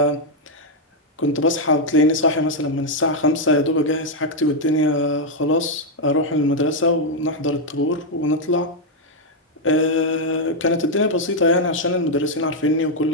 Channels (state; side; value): normal; both; correlation 0.00